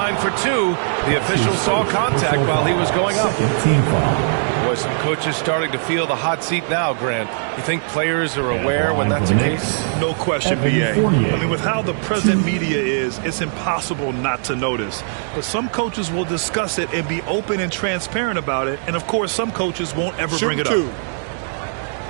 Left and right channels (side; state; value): left; silent; digital silence